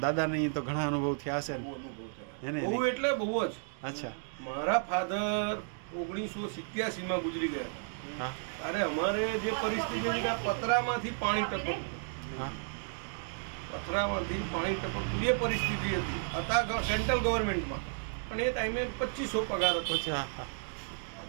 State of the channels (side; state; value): left; silent; digital silence